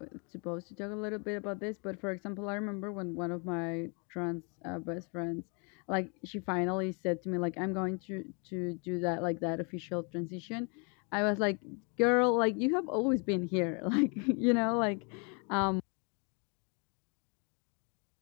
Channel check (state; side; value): quieter; right; 35.3 dB